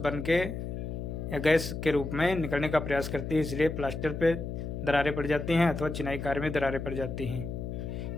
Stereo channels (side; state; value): left; noise; hum, 5 dB below the sound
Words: बन के या गैस के रूप में निकलने का प्रयास करती है। इसलिए प्लास्टर पे दरारें पड़ जाती हैं अथवा चिनाई कार्य में दरारें पड़ जाती हैं।